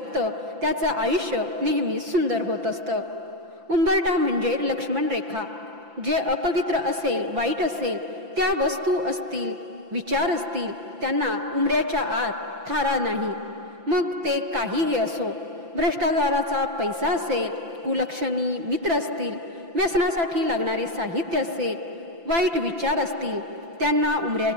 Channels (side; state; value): left; late; 5.9 ms